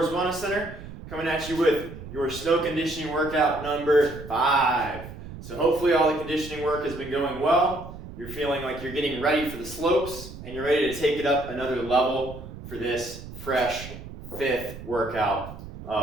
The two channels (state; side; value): noise; right; rumble, 13 dB below the sound